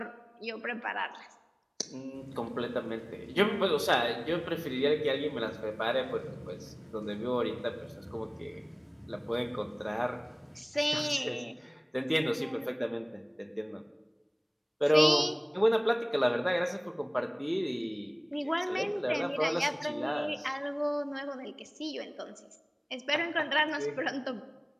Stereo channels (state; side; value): identical; both; correlation 1.00